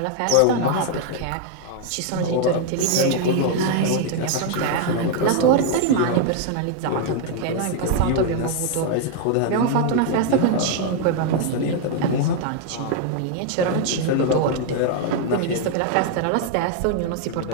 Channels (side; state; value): both; different; correlation 0.00